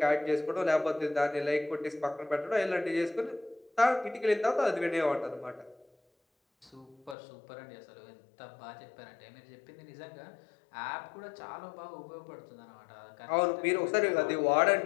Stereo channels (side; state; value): right; drops out; at 7.2 s